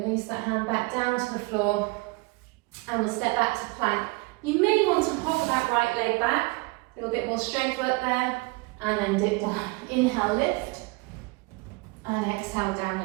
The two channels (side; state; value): left; quieter; 26.2 dB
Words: that hand back down to the floor. And we'll step back to plank. You may want to hover that right leg back. A little bit more strength work there. And then dip down. Inhale, lift. And exhale,